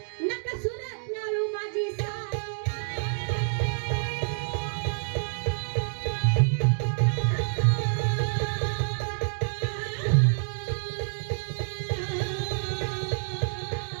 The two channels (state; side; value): silent; left; digital silence